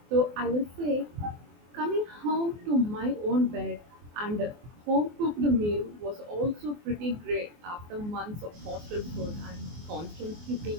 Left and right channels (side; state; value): left; late; 24 ms